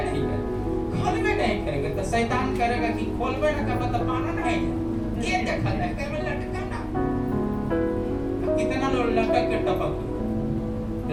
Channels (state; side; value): identical; both; correlation 1.00